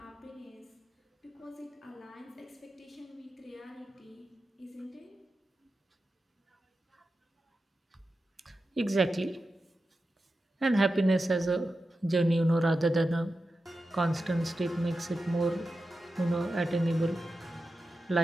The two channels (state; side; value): normal; both; correlation 0.91